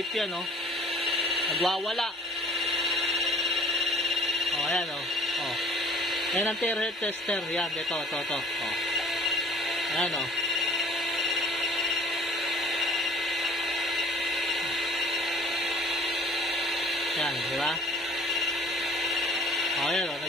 yan oh. Nagwawala. Oh, ayan oh. Oh. Yan ang terahertz tester. Yan, ito. Oh. Ayan oh. Yan, di ba? Oh, ayan oh.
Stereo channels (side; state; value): both; normal; correlation 0.50